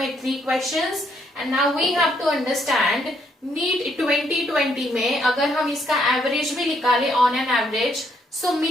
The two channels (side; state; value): both; normal; correlation 0.72